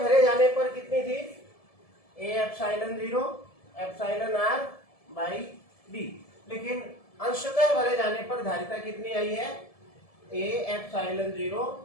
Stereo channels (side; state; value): right; late; 1.7 ms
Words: भरे जाने पर कितनी थी, ए epsilon 0 epsilon r by D, लेकिन अंशतः भरे जाने पर धारिता कितनी आई है, ए epsilon 0